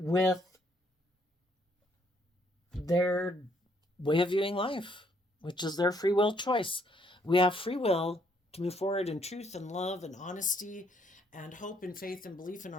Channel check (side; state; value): both; normal; correlation 0.69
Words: their way of viewing life, which is their free will choice. We have free will to move forward in truth and love and honesty and hope and faith and belief in